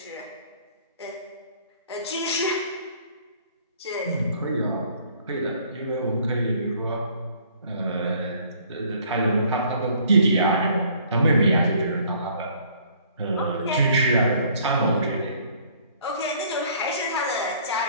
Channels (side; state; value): both; inverted; correlation -0.58